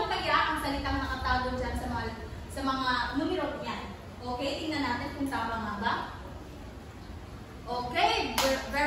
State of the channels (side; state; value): both; identical; correlation 1.00